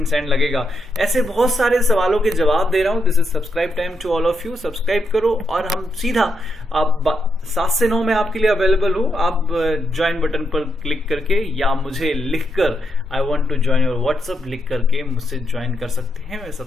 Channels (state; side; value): normal; both; correlation 0.80